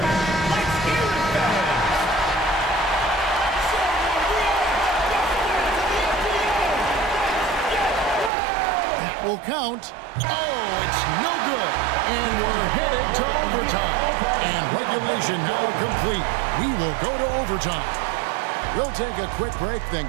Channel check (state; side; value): drops out; left; at 8.3 s